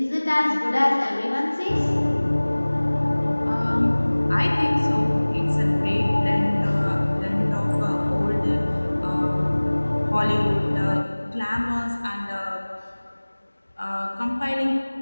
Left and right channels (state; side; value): inverted; both; correlation -1.00